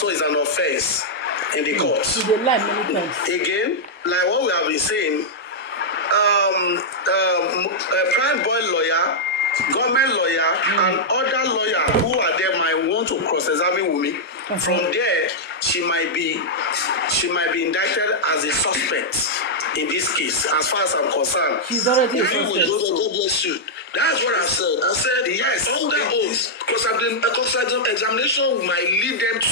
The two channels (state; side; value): normal; both; correlation -0.06